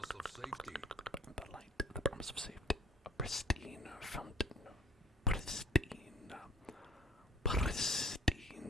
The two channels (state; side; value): normal; both; correlation 0.52